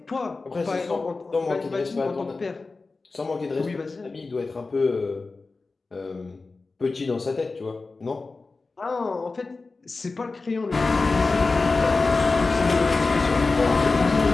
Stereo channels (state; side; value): quieter; right; 3.8 dB